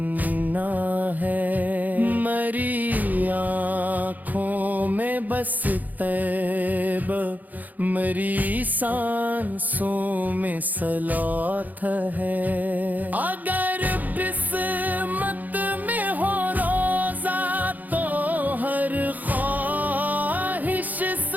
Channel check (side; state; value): left; late; 0.082 ms